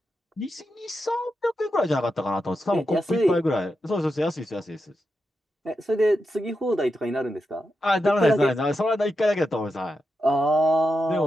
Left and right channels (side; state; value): both; normal; correlation 0.87